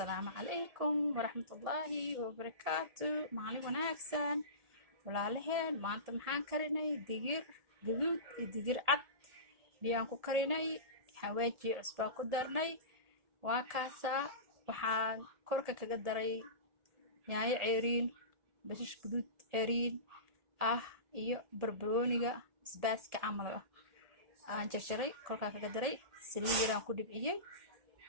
عليكم ورحمة الله وبركاته. مالي وناكسن walaalaheen maanta maxaan karinay digir gaduud iyo digir cad biyaan ku karinay xawaaji cusbaa ku darnay waa kaasa waxaan korka kaga daray yaanyo ceeriin bashash gaduud ceeriin iyo barbarooniga basbaaska camal aan jarjaray korka kaga daray saliid yaraan ku dhibciyay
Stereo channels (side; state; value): left; late; 1.7 ms